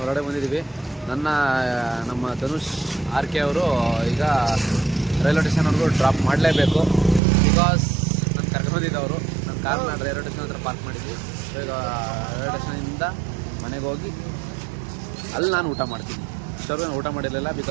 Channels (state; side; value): drops out; left; at 7.2 s